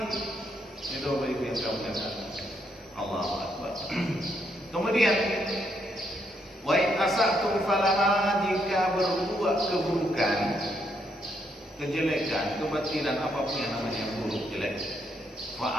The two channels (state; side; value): normal; both; correlation 0.76